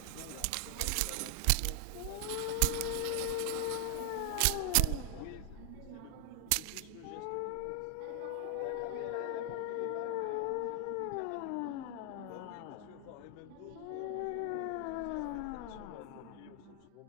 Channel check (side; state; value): both; different; correlation 0.00